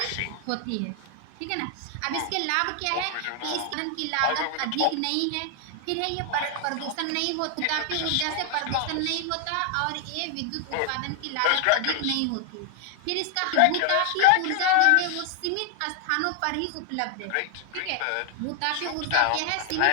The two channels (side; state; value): both; different; correlation 0.00